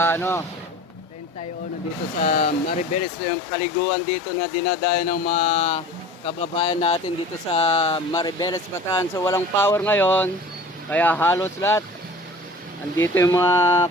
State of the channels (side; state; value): both; normal; correlation 0.41